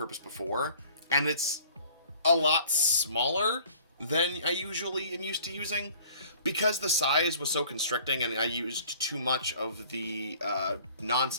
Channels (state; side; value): inverted; both; correlation -0.52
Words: before. And it's a lot smaller than I usually am used to using. Because the size was so constricting and I used too much of the